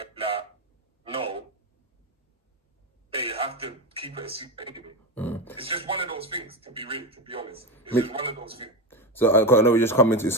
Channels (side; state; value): both; normal; correlation 0.15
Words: like, no, they have to keep it a secret anyway. It's just one of those things, to be honest. It's just one of those things. So I know we're just coming to